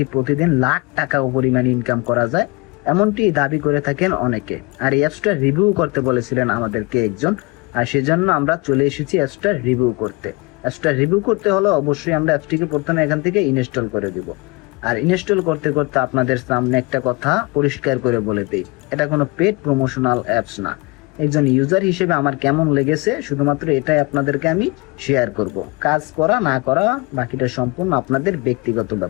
প্রতিদিন লাখ টাকা পরিমাণ ইনকাম করা যায়, এমনটি দাবি করে থাকেন অনেকে। আর এই অ্যাপসটা রিভিউ করতে বলেছিলেন আমাদেরকে একজন, আর সেজন্য আমরা চলে এসেছি অ্যাপসটা রিভিউ করতে। অ্যাপসটা রিভিউ করতে হলে অবশ্যই আমরা অ্যাপসটিকে প্রথমে এখান থেকে ইনস্টল করে দিব। আর ইনস্টল করতে করতে আপনাদের সামনে একটা কথা পরিষ্কার করে বলে দেই, এটা কোনো পেড প্রমোশনাল অ্যাপস না। একজন ইউজার হিসেবে আমার কেমন লেগেছে শুধুমাত্র এটাই আপনাদেরকে আমি শেয়ার করব। কাজ করা না করা বাকিটা সম্পূর্ণ আপনাদের ব্যক্তিগত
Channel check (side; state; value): right; quieter; 26.3 dB